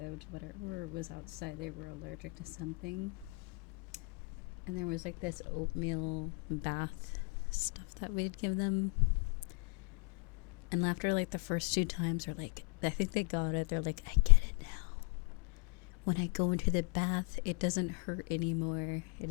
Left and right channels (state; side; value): quieter; right; 32.5 dB